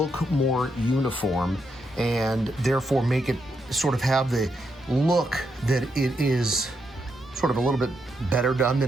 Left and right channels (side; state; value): both; normal; correlation 0.81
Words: more uniform, and therefore make it sort of have the look that it is sort of a little bit better done